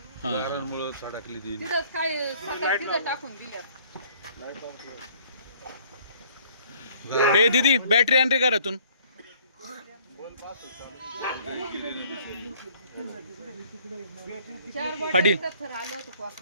हा. तिथं काय सतत तिथं टाकून दिल्या. हे दीदी बॅटरी आण रे घरातून. पाटील. थर आलं होतं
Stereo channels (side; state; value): both; inverted; correlation -0.57